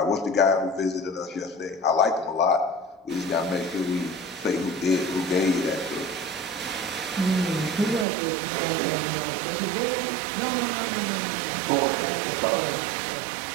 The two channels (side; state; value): left; drops out; at 8.1 s